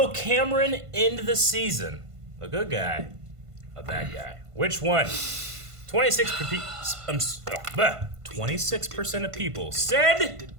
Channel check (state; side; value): late; left; 1.5 ms